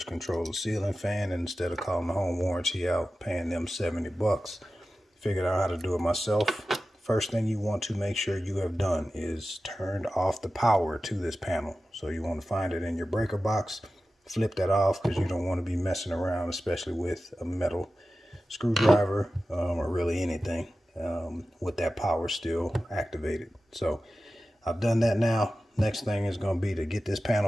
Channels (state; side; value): normal; both; correlation 0.94